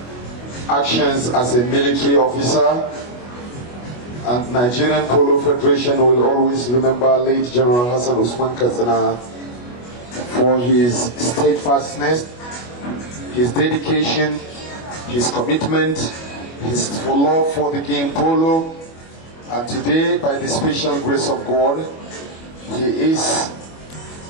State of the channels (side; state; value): right; late; 25 ms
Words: actions as a military officer, and Nigerian Polo Federation will always remember late General Hassan Usman Katsina for his steadfastness, his dedication, his commitment, his love for the game polo, And today, by the special grace of God, he is